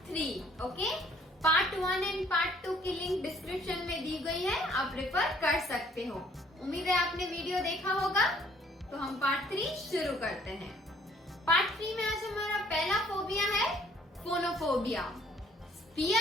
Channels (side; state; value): both; normal; correlation 0.60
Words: 3। Okay, part 1 and part 2 की लिंक डिस्क्रिप्शन में दी गई है, आप रेफर कर सकते हो। उम्मीद है आपने वीडियो देखा होगा। तो हम पार्ट 3 शुरू करते हैं। पार्ट 3 में आज हमारा पहला फोबिया है phonophobia,